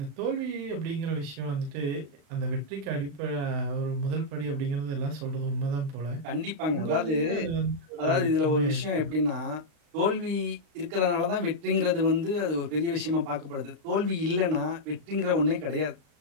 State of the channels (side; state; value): left; late; 35 ms